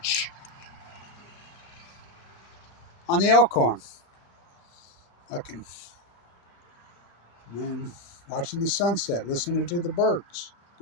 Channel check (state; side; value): late; right; 35 ms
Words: On the Elkhorn. Fucking, man, watching the sunset, listening to the birds.